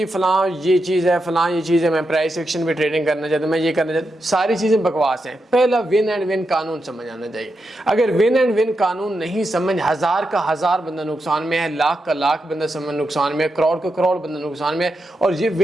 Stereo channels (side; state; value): both; normal; correlation 0.86